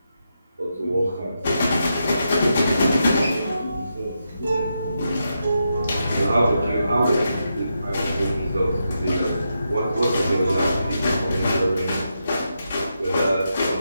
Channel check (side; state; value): both; inverted; correlation -0.85